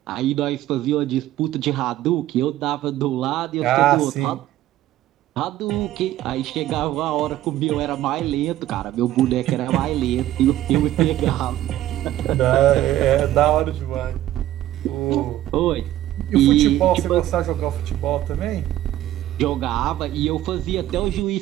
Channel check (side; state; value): left; quieter; 13.7 dB